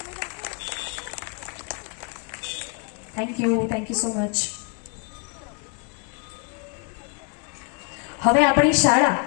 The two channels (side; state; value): right; quieter; 36.3 dB